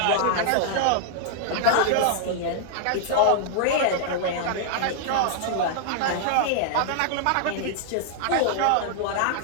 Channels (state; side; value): different; both; correlation -0.01